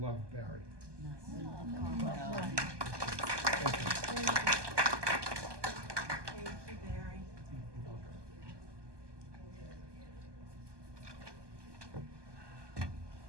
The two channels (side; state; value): left; late; 1.2 ms